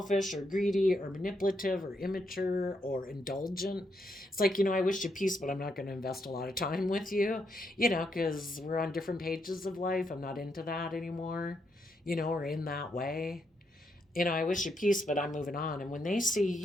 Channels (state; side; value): normal; both; correlation 0.79